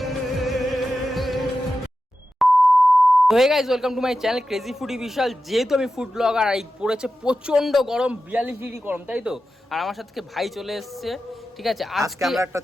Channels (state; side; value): normal; both; correlation 0.92